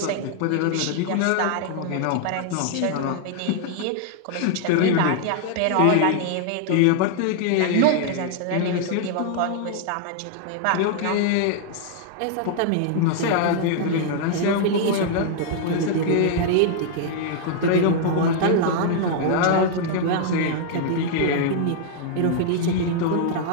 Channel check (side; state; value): both; different; correlation -0.01